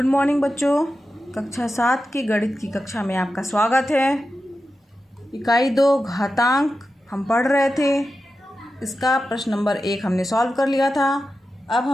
morning बच्चों। कक्षा 7 की गणित की कक्षा में आपका स्वागत है। इकाई 2 घातांक हम पढ़ रहे थे। इसका प्रश्न नंबर 1 हमने सॉल्व कर लिया था। अब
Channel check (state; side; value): normal; both; correlation 0.91